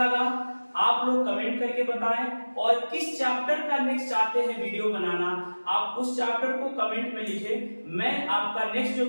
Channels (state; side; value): inverted; both; correlation -1.00